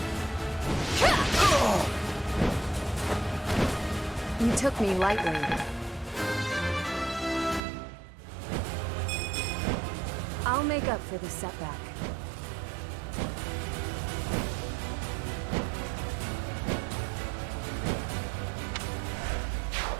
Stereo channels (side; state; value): left; drops out; at 7.6 s